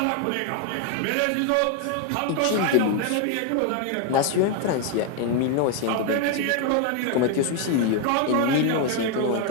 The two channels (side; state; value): both; different; correlation 0.01